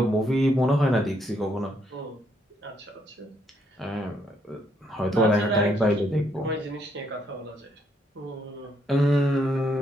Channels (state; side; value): normal; both; correlation 0.73